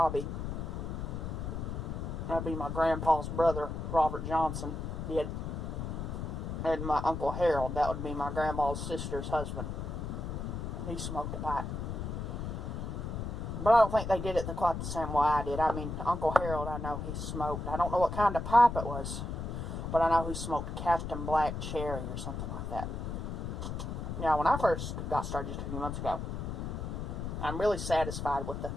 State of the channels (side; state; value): left; noise; rumble, 4 dB below the sound